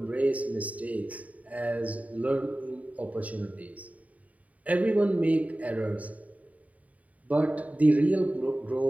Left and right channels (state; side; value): late; left; 0.070 ms